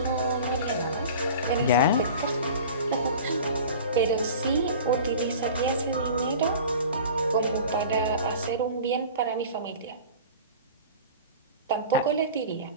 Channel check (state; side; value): inverted; both; correlation -0.39